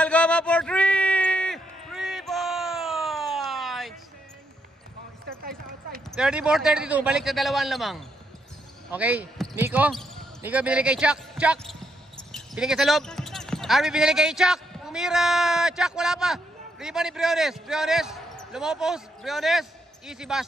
for 3 points. 34-32, balik sa dalawang lamang. Okay, Nico binili kay Chuck. Binigay sa loob. Arby binili kay Chuck. Tumira, Chuck, wala pa. Rebound ni Briones, lumopos. Briones, easy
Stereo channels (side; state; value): both; normal; correlation 0.77